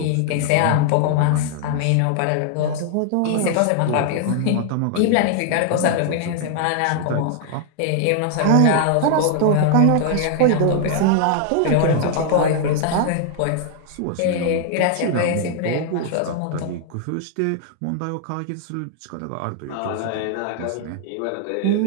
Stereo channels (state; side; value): different; both; correlation 0.00